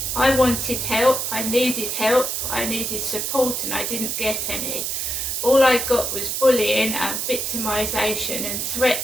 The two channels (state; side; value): noise; right; hiss, 2 dB below the sound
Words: I wanted help, I needed support, and I didn't get any. All I got was bullying and victimisation and